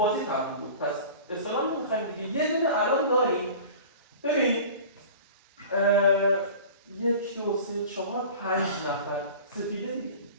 تموم بود پس اصلا نمیخوایم دیگه یه دونه الان داریم ببین 1 2 3 4 5 نفر سپیده دیگه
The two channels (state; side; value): inverted; both; correlation -0.40